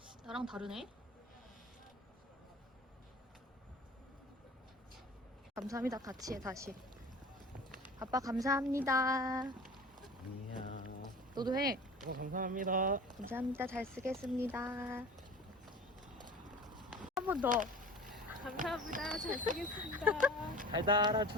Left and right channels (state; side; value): normal; both; correlation 0.39